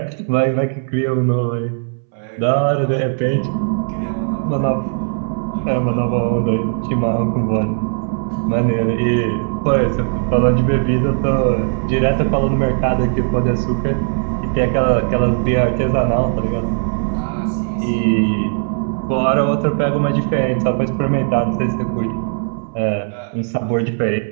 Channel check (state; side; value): silent; left; 67 dB below the other